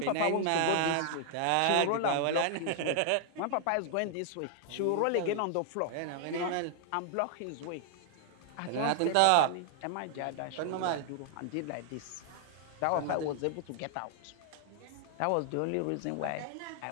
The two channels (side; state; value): both; different; correlation -0.01